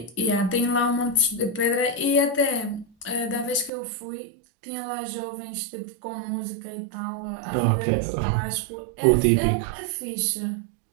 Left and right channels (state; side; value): drops out; left; at 3.7 s